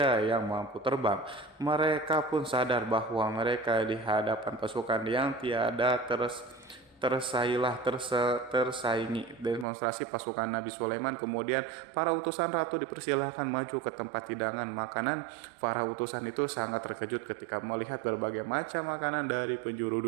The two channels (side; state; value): left; drops out; at 9.7 s